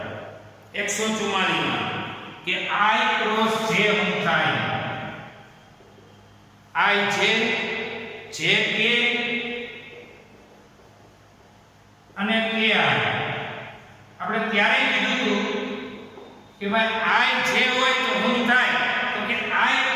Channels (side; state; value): both; identical; correlation 1.00